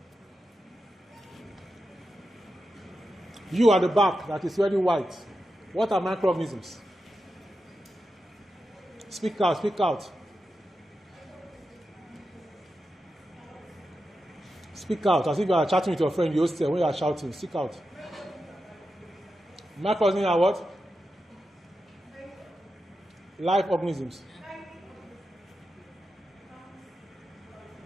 You at the back that is very white. What are microorganisms? Speak out, speak out. Speak out, as if you are chatting with your friend, you hostel, when you are shouting, speak out. Microorganisms are what? Live organisms.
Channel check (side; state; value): both; normal; correlation 0.89